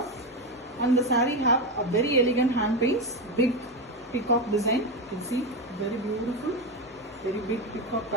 And the saree have a very elegant hand paints, big peacock design. You can see very beautiful, very big peacock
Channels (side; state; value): both; normal; correlation 0.13